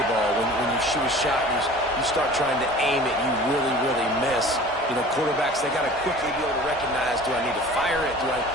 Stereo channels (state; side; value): normal; both; correlation 0.43